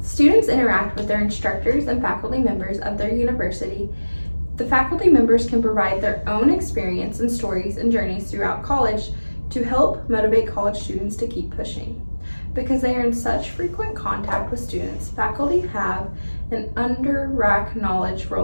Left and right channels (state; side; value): inverted; both; correlation -1.00